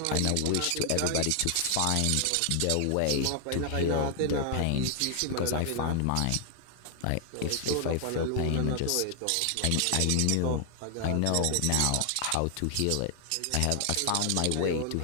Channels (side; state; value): both; different; correlation 0.00